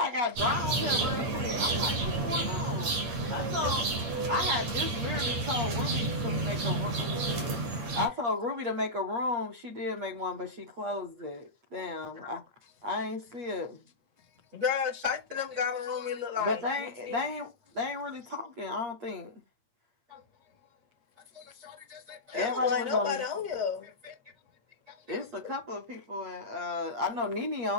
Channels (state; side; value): late; left; 8.5 ms